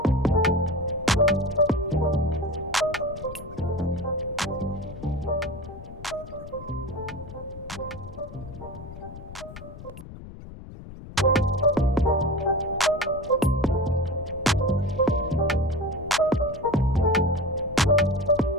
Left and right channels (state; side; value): noise; left; rumble, 14 dB below the sound